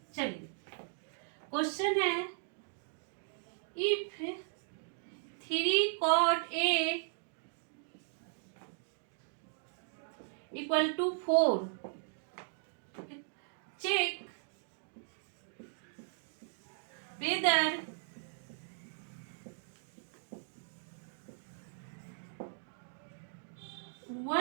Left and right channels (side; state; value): left; silent; digital silence